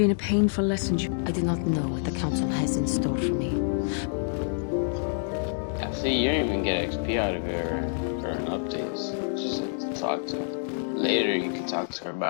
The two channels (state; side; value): silent; right; digital silence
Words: a painful lesson. I do not know what the council has in store for me. See, you don't even get XP out of her or an updates. Just like to talk to her. Later you can talk to her